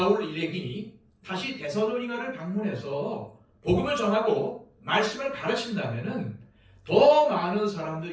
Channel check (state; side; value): identical; both; correlation 1.00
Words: 일행이 다시 데살로니가를 방문해서 복음을 전하고 말씀을 가르친다면 더 많은